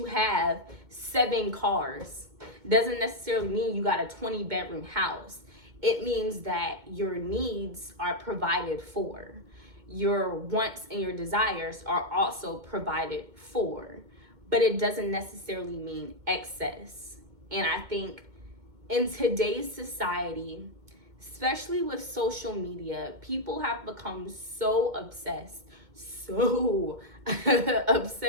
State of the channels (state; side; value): late; left; 2.2 ms